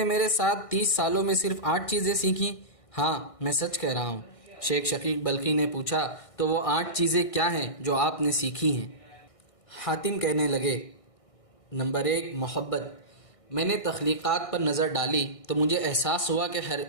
میرے ساتھ 30 سالوں میں صرف 8 چیزیں سیکھیں؟ ہاں، میں سچ کہہ رہا ہوں۔ شیخ شقیق بلخی نے پوچھا تو وہ 8 چیزیں کیا ہیں جو آپ نے سیکھی ہیں؟ حاتم کہنے لگے، نمبر 1، محبت۔ میں نے تخلیقات پر نظر ڈالی تو مجھے احساس ہوا کہ ہر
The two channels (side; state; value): right; late; 1.6 ms